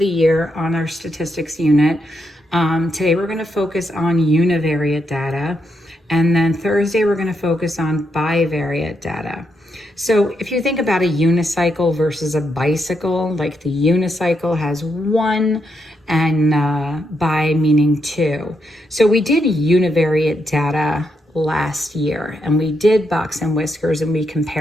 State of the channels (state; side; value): normal; both; correlation 0.81